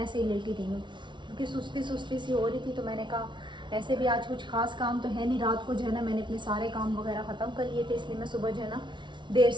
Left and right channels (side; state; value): left; late; 0.23 ms